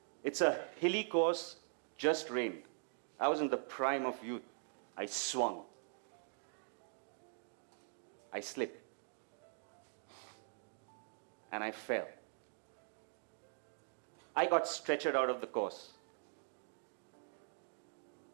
It's a hilly course, just rained. I was in the prime of youth. I swung. I slipped. And I fell. I got stretchered out of the course.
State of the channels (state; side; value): silent; left; digital silence